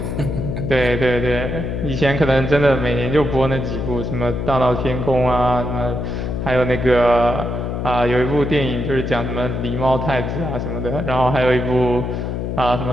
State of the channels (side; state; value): left; noise; hum, 3 dB below the sound